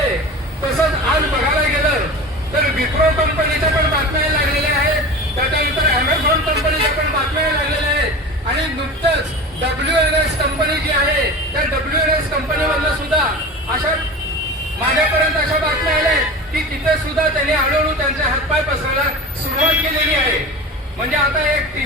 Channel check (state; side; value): normal; both; correlation 0.32